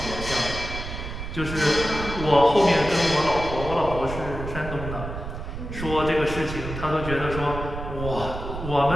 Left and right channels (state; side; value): noise; right; rumble, 8 dB below the sound